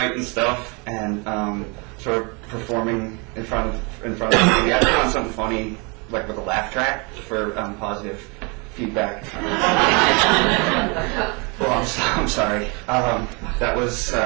stuff and sort of performing in front of the TV. I found something funny, like with a laugh track for positive feedback. Well, I'm sorry. That was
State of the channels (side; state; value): left; quieter; 31.0 dB